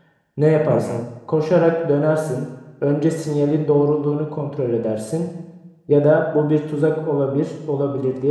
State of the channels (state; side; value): identical; both; correlation 1.00